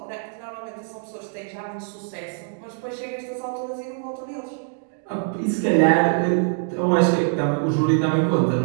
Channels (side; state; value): left; silent; 59 dB below the other